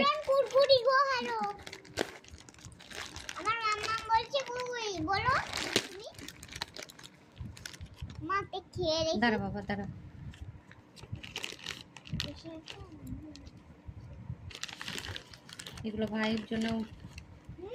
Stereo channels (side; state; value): both; identical; correlation 1.00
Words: কুরকুরি গো হ্যালো আমার মাম্মা বলছে কুরকুরি বলো তুমি মাতে খেয়ে রেখে দাঁড়া বাবা দাঁড়া, এগুলো ভাইয়ের জন্য